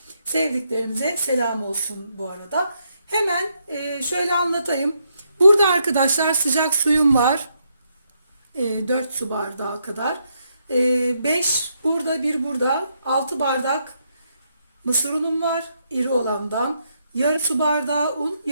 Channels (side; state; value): both; inverted; correlation -0.77